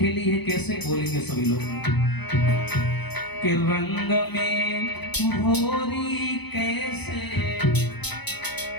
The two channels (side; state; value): right; late; 0.98 ms